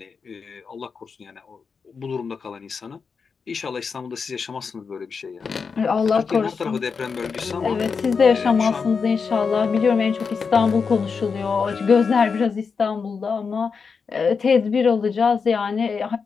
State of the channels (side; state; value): right; quieter; 5.4 dB